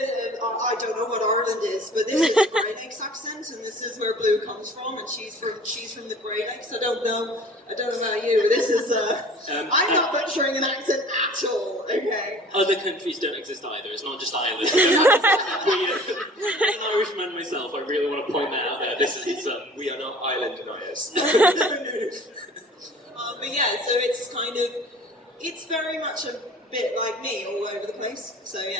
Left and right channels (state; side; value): normal; both; correlation 0.47